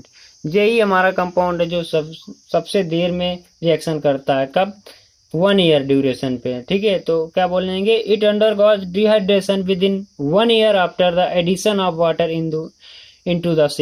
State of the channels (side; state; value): both; identical; correlation 1.00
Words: यही हमारा कंपाउंड है जो सबसे देर में रिएक्शन करता है, कब, 1 ईयर ड्यूरेशन पे, ठीक है। तो क्या बोलेंगे, it undergoes dehydration within 1 year after the addition of water into the